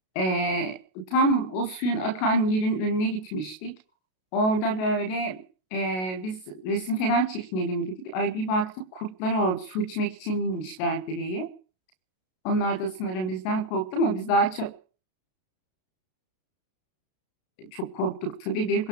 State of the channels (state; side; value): late; right; 33 ms